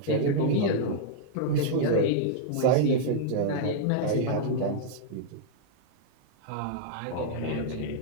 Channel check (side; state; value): both; different; correlation -0.01